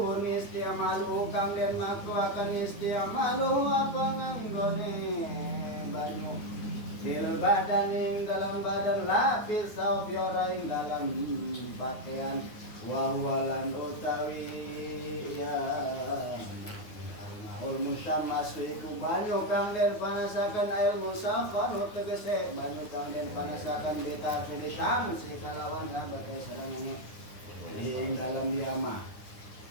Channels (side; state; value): right; late; 9.5 ms